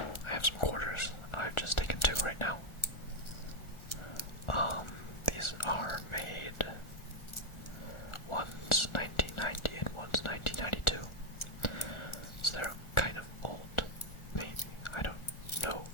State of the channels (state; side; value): late; right; 1.4 ms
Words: have some quarters. I've just taken two right now. These are made, one's 1990 and one's 1992. So they're kind of old, maybe. I don't know